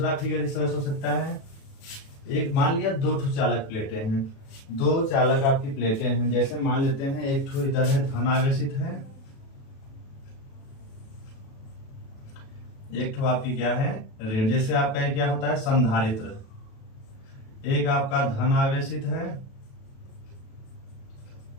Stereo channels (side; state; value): right; late; 37 ms